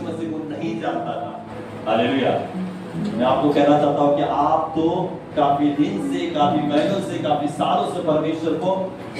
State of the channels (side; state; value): both; identical; correlation 1.00